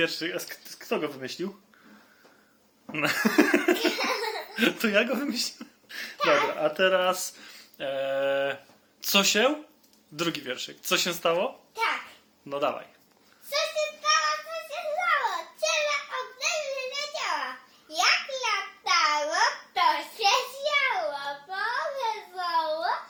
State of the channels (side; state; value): both; identical; correlation 1.00